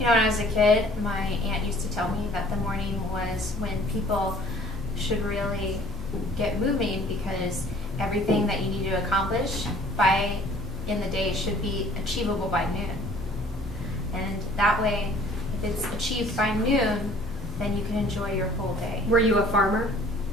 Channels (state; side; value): normal; both; correlation 0.54